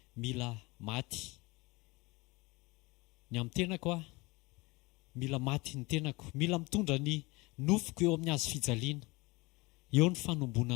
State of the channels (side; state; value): right; quieter; 24.1 dB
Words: mila maty ny amin'ny tenako mila maty ny tenako mila mitondra ny nofoko eo amin'ny hazo fijaliana eo ny